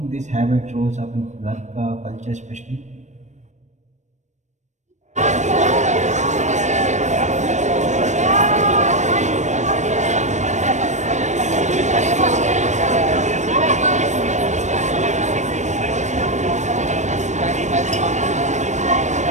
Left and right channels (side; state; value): left; late; 0.34 ms